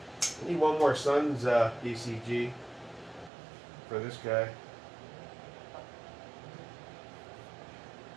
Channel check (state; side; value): drops out; left; at 3.3 s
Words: I need one more Suns DCG for this guy.